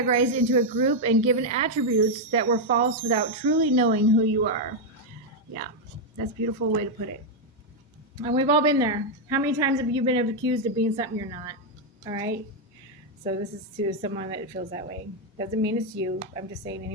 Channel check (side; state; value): both; normal; correlation 0.00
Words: into a group and given attributes that were false without truly knowing who you are? Yeah, that's a beautiful way to put it. And we've all been there. How many times have you been accused of being something you're not? All right. So this is to someone that feels that way. Doesn't mean it's you. I'm just saying